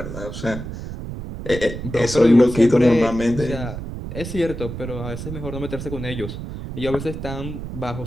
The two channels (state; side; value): noise; right; rumble, 8 dB below the sound